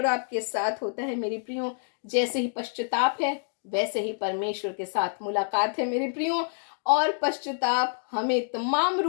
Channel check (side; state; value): right; silent; digital silence